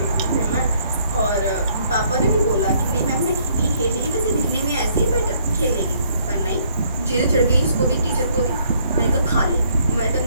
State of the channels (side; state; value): both; inverted; correlation -0.66